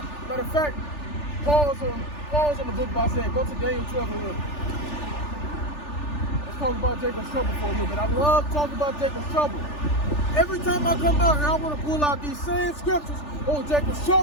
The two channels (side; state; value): right; late; 3.4 ms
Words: Matter of fact, pause on the book by saying, go to Daniel 12 and 11. Let's talk about Jacob's trouble for a little bit. I love talking about Jacob's trouble. Every time I come out here, I want to pull out these same scriptures. Oh, Jacob's